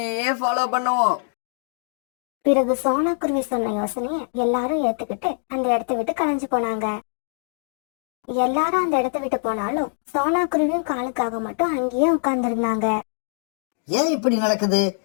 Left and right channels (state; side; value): silent; right; digital silence